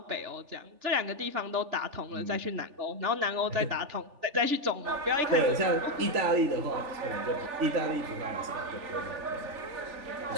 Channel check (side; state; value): left; late; 3.4 ms